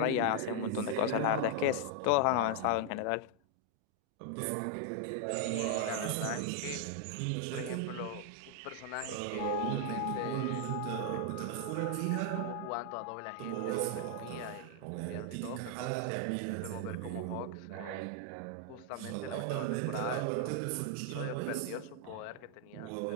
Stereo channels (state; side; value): different; both; correlation 0.00